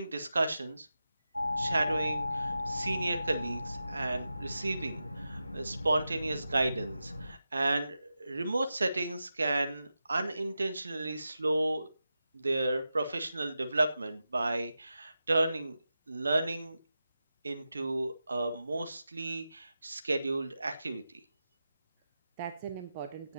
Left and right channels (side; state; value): both; inverted; correlation -0.91